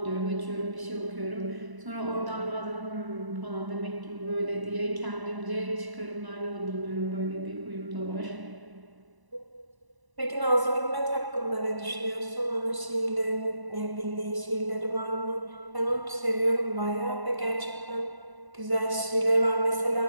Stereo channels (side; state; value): left; late; 1.0 ms